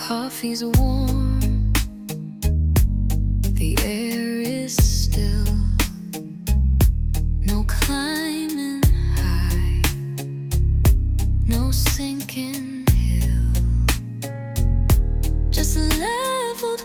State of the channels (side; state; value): both; identical; correlation 1.00